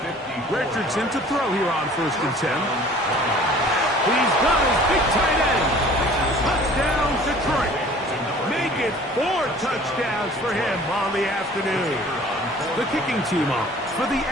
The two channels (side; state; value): both; normal; correlation 0.49